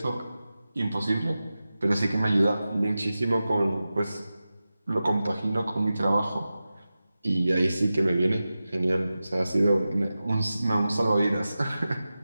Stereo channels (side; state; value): both; inverted; correlation -0.94